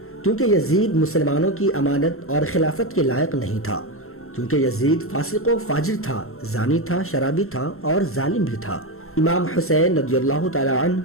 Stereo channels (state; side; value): late; right; 0.62 ms